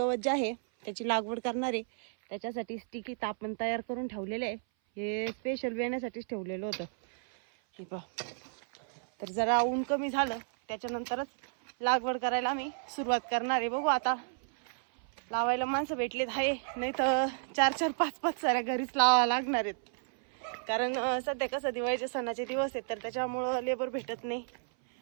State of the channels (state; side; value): silent; left; 56 dB below the other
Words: जे आहे त्याची लागवड करणार आहे. त्याच्यासाठी स्टिकी आपण तयार करून ठेवलेले आहे. हे स्पेशल येण्यासाठीच ठेवलेलं होतं हे पहा. तर जरा ऊन कमी झालं त्याच्यानंतरच लागवड करायला आम्ही सुरुवात करणार आहे. बघू आता लावायला माणसं भेटलेत आहे, नाही तर 4-4, 5-5 साऱ्या घरीच लावावं लागणार आहेत. कारण सध्या कसं दिवाळीचे सणाचे दिवस आहेत तर त्याच्यामुळं लेबर भेटत नाही.